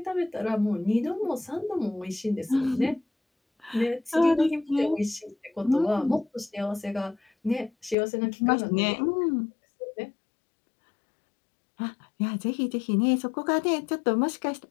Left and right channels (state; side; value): drops out; right; at 8.0 s